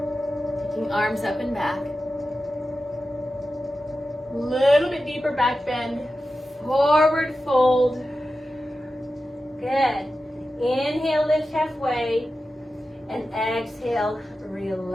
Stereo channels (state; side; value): normal; both; correlation 0.92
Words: Taking arms up and back. Little bit deeper back bend. Forward fold. Good. Inhale, lift halfway. And exhale,